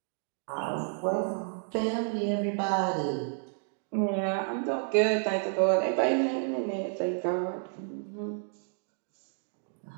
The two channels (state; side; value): silent; left; 57 dB below the other